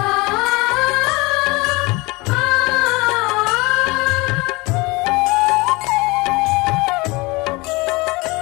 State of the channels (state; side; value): quieter; right; 24.2 dB